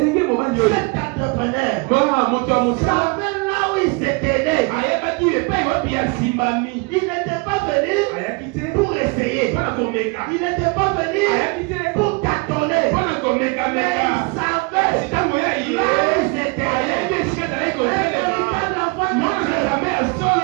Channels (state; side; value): quieter; left; 30.4 dB